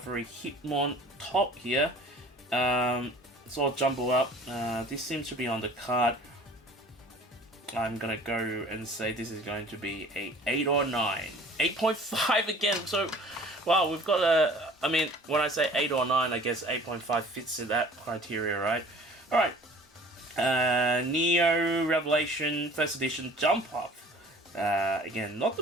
Hitmon top here. It's all jumbled up. This seems to be on the card. I'm gonna go and say this is going to be a 8 or 9. 8.5 again, so wow, we've got a, I mean, when I say 8 or 9, I guess 8.5 fits in that criteria, right? Alright, Neo Revelation First Edition Jump Up. Again, not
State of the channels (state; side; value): normal; both; correlation 0.47